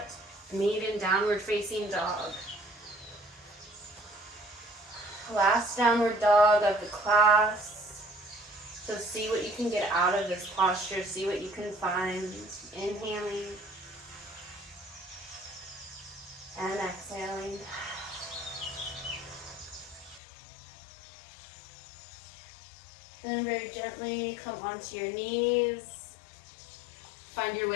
Meet in downward facing dog. Last downward dog of the class. So see what you can get out of this posture. See what you can find. Inhaling and exhaling. Then very gently come onto your knees. Find your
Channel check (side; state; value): right; drops out; at 20.2 s